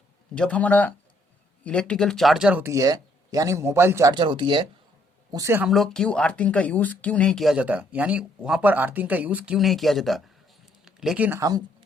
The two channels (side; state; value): both; normal; correlation 0.68